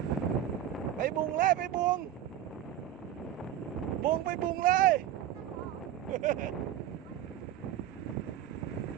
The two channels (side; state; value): left; quieter; 11.3 dB